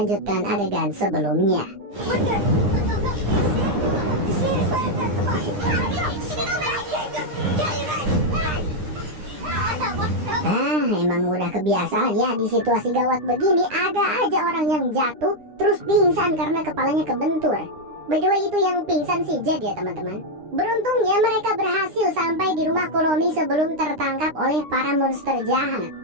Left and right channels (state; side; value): late; left; 9.8 ms